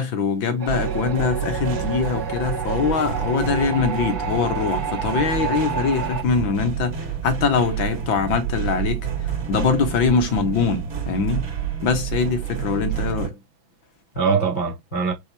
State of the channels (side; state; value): right; late; 6.0 ms